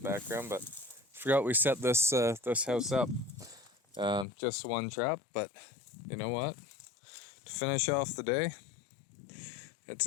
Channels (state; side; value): drops out; right; at 4.2 s